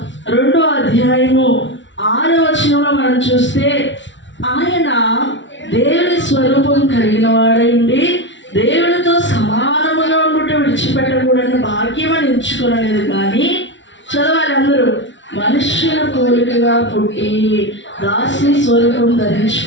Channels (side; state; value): right; late; 0.54 ms